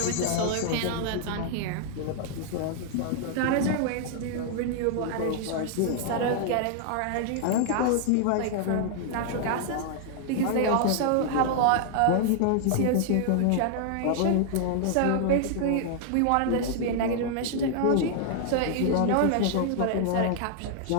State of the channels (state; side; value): different; both; correlation -0.01